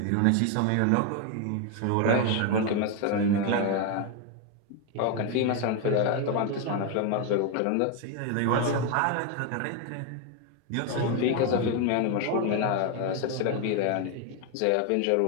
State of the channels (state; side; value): different; both; correlation 0.01